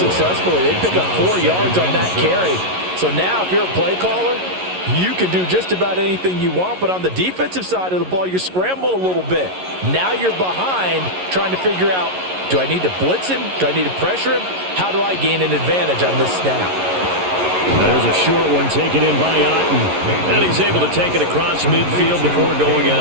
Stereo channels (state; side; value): late; left; 11 ms